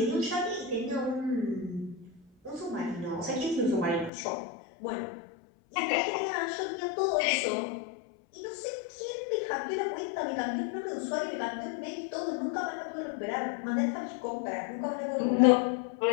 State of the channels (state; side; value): drops out; right; at 4.1 s